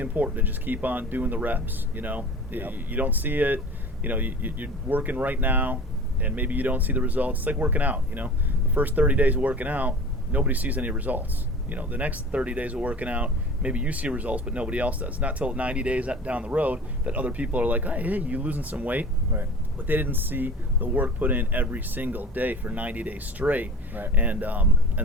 important to just keep on doing the reps. You don't see it, you're working right now, and maybe you don't see the results. It's like working out. The first 30 days of working out, nobody sees any results. The next 30 days of working out, maybe you see results, but nobody else does. Not till 90 days down the road that other people are like, hey, you losing some weight. Right. But they didn't see the work put in every single day for 90 days straight. Right. And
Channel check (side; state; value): both; normal; correlation 0.39